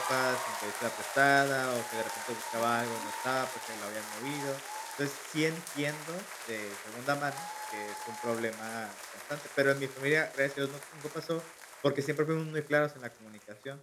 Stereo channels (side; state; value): both; identical; correlation 1.00